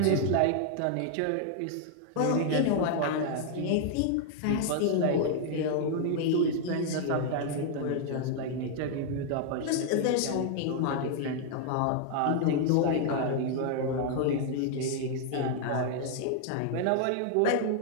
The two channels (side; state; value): both; different; correlation 0.00